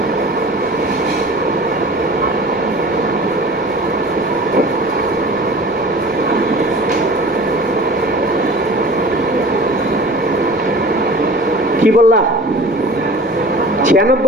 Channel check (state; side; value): normal; both; correlation 0.41